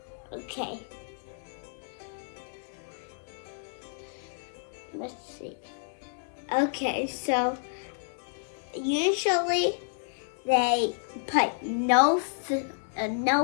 Okay. Let's see. Okay, so usually they put no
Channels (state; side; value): silent; right; digital silence